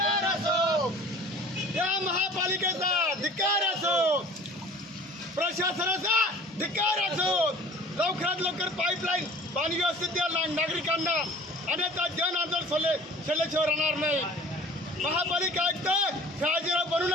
असो, या महापालिकेचा धिक्कार असो, प्रशासनाचा धिक्कार असो। लवकरात लवकर पाईपलाईन पाणी व्यवस्थित द्या नागरिकांना, अन्यथा जन आंदोलन सल्ल्याशिवाय राहणार नाही। महापालिका आयुक्त शहाजीराव बनू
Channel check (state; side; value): normal; both; correlation 0.46